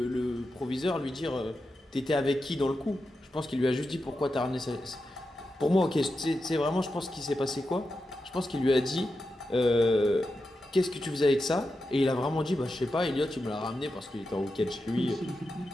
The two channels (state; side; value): normal; both; correlation 0.89